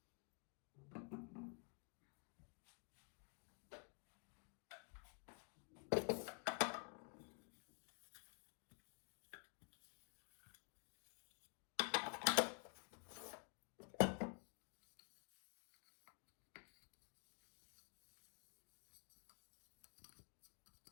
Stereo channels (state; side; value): quieter; right; 35.6 dB